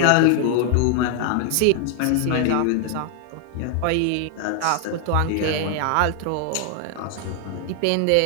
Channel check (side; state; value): both; different; correlation 0.00